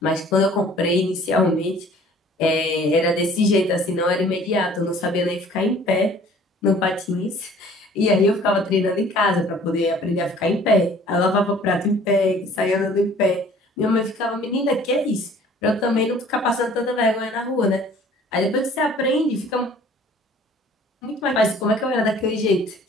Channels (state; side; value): normal; both; correlation 0.52